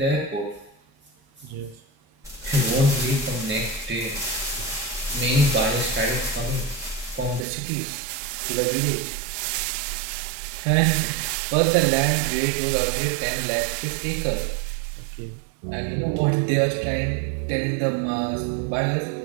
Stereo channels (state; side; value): drops out; left; at 7.5 s